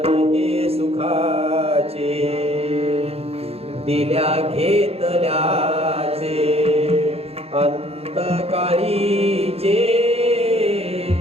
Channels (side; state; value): left; late; 0.29 ms